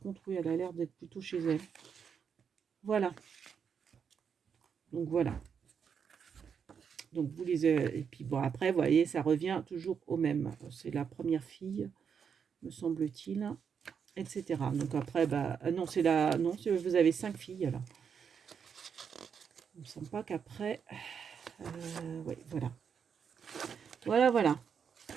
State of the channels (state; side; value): quieter; left; 6.9 dB